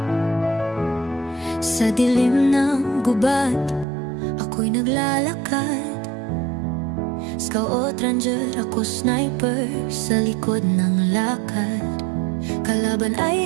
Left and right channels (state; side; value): drops out; left; at 3.9 s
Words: dilim ng gubat, ako'y naglalakad. Scout ranger, ako sniper, sa likod ng lakad. Kalaban ay